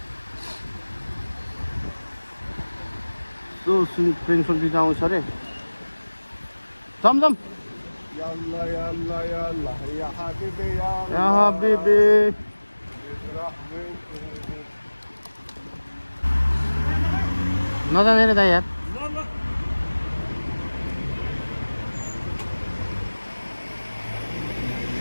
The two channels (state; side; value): inverted; both; correlation -1.00